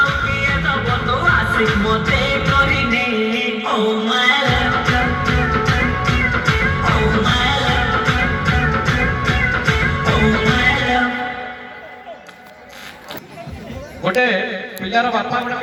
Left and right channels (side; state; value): both; identical; correlation 1.00